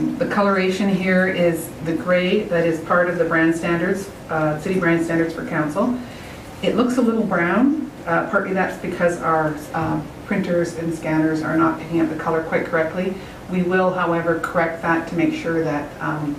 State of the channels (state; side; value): identical; both; correlation 1.00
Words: coloration here is the gray that is part of the brand standards, city brand standards for council. It looks a little brown. Partly that's because our printers and scanners are not picking up the color quite correctly. We will, however, correct that to make sure that